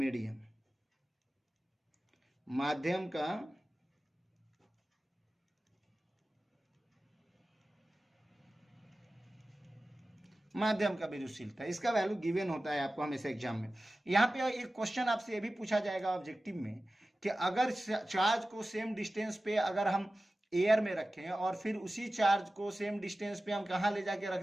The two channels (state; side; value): normal; both; correlation 0.96